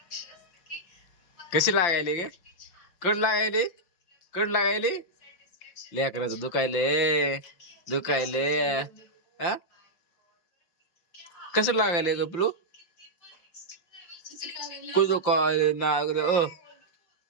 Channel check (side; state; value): right; late; 5.8 ms